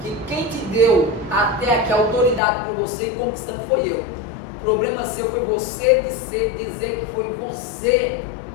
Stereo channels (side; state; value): right; drops out; at 2.4 s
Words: que quem te deu até aqui a autoridade para você ir conquistando foi eu. O problema seu foi você dizer que foi você,